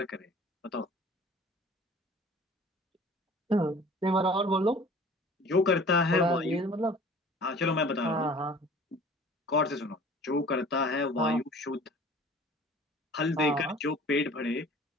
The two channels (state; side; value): normal; both; correlation 0.47